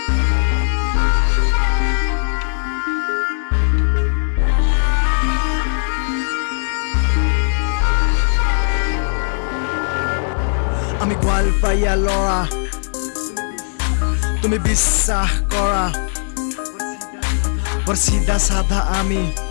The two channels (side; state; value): right; silent; digital silence